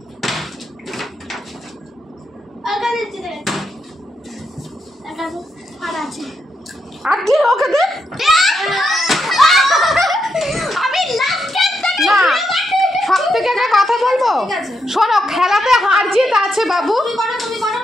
আলকা দিতে দে আলকা আর আছে আর কি ওকে দে আমি লাস্ট গেম থেকে না সব থেকে একটা কথা বলবো ঠিক আছে। শোনো খেলাতে হার জিত আছে বাবু তুমি করো, তুমি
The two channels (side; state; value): both; normal; correlation 0.81